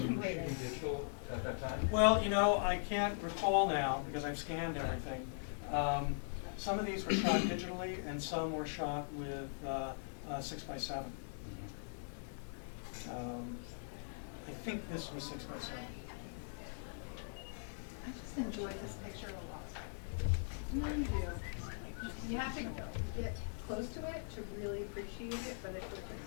shooting digital at that time? Well, I can't recall now because I've scanned everything. Some of these were shot digitally and some were shot with 6x7. I think this was 6x7. I just enjoy this picture a lot. You really do. You have to get close to it to really appreciate it, but it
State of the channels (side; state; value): right; silent; digital silence